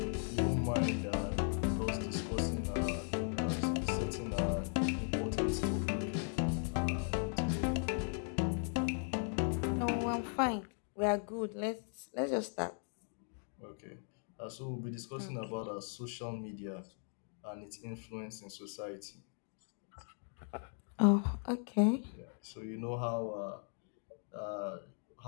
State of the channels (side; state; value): right; silent; 52 dB below the other